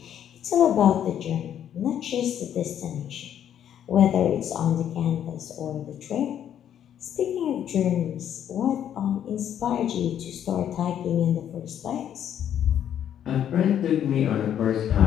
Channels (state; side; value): quieter; right; 9.9 dB